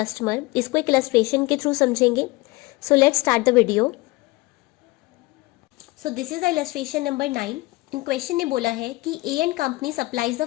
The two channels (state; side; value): quieter; right; 21.8 dB